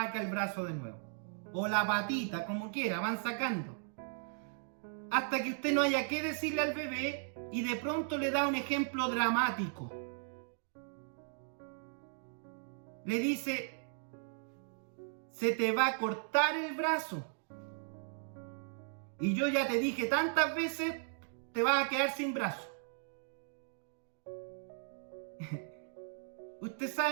el brazo de nuevo. O la patita, como quiera, van sacando. Hasta que usted no haya que decirle al bebé y de pronto le da un ejemplo dramático. Le dice, se te va a cortar el brazo. Y yo ya te dije tantas veces, te vas a quedar sin brazo. Usted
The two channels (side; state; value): left; silent; digital silence